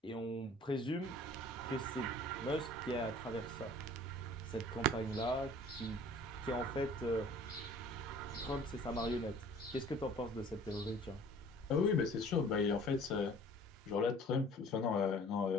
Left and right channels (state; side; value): normal; both; correlation 0.49